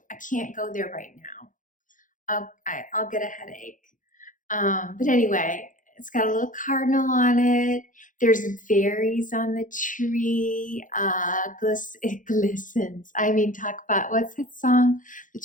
I can't go there right now. I'll get a headache. But anyway, it's got a little cardinal on it. There's berries on the tree. It glistens. I mean, talk about, what's that song? The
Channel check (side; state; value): right; late; 0.38 ms